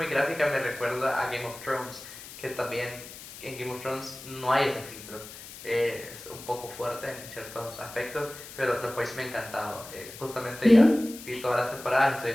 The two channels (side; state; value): left; noise; hiss, 14 dB below the sound